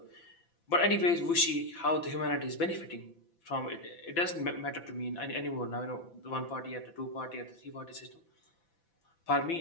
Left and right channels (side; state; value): right; late; 5.9 ms